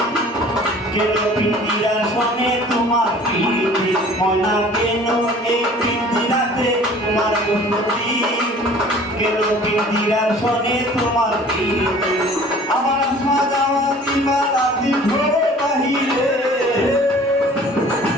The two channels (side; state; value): both; normal; correlation 0.48